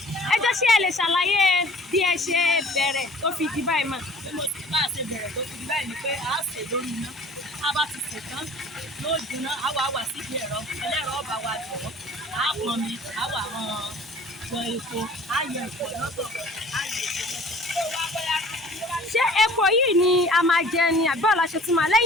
ẹ jọ̀ọ́ ṣé ẹ lè ṣàlàyé bí ẹ ṣe bẹ̀rẹ̀ tó fi di báyìí mà? Bí mo ti bá ṣe bẹ̀rẹ̀ tó fi di báyìí ni pé a ṣe lórí iná. A bá ti sè tán, yóò jiná, a wà síbi ẹ̀rọ. Ẹlẹ́rọ ọba wa jọ̀wọ́. A pọn mi, a wà wọ epo, a yẹ epo lọ́tọ̀, a yẹ epo lọ́tọ̀. Ṣé epo yìí ni a máa jẹ ni àbí ọ̀la ṣe tún máa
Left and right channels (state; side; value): normal; both; correlation 0.49